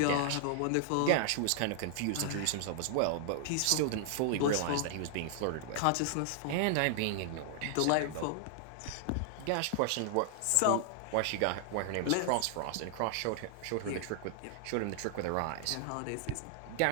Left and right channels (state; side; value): different; both; correlation 0.00